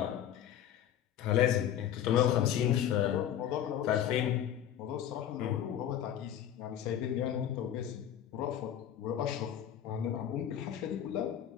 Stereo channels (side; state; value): right; quieter; 10.4 dB